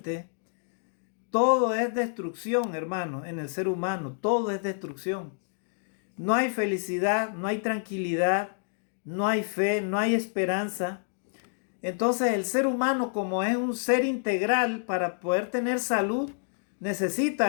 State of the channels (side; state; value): right; silent; digital silence